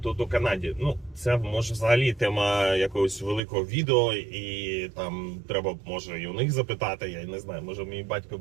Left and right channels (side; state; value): left; drops out; at 3.4 s